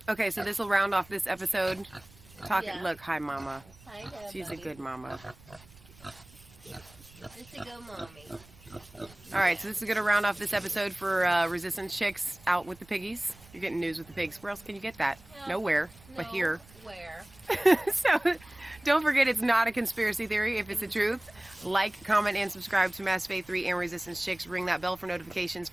Okay, so this will round off this episode. Yeah. Look, hi, Mama. Hi, Dad, She's buddy. a good mama. It's a good mommy. All right, so this is going to round off this episode for Resistance Chicks out with the piggies. You're getting news with the pigs. Where else can you get that? Nowhere, but here. Where? So don't forget, it's not a conspiracy theory if it's the truth. Like, comment, and subscribe to Mass Faith 3 and Resistance Chicks. Ring that bell for notifications.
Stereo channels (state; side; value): noise; right; rumble, 24 dB below the sound